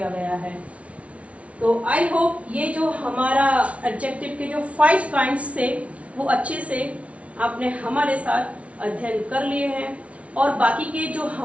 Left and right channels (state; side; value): late; left; 0.064 ms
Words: गया है। तो आई होप ये जो हमारा एडजेक्टिव के जो 5 काइंड्स थे वो अच्छे से आपने हमारे साथ अध्ययन कर लिए हैं, और बाकी के जो